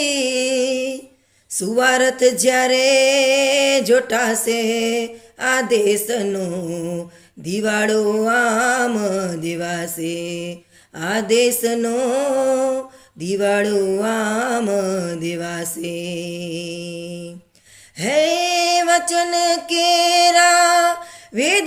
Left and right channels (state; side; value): identical; both; correlation 1.00